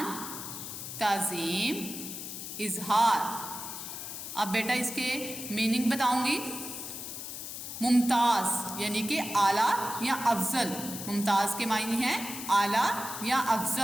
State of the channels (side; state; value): left; noise; hiss, 8 dB below the sound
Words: تعظیم، اظہار۔ اب بیٹا اس کے میننگ بتاؤں گی۔ ممتاز یعنی کہ اعلیٰ یا افضل۔ ممتاز کے معنی ہیں اعلیٰ یا